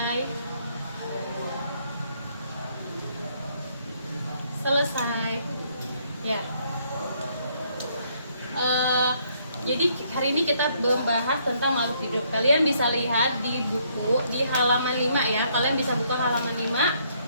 Selesai ya. Jadi hari ini kita membahas tentang makhluk hidup. Kalian bisa lihat di buku di halaman 5 ya. Kalian bisa buka halaman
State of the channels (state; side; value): inverted; both; correlation -0.69